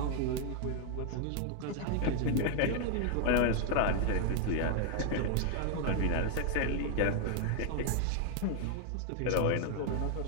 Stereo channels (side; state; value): both; different; correlation 0.00